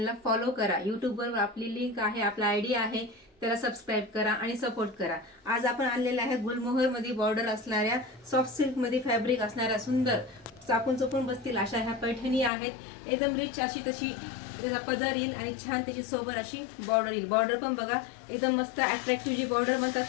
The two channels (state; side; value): drops out; right; at 12.5 s